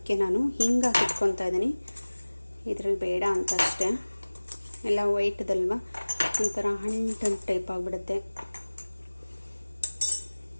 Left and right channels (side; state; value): both; inverted; correlation -1.00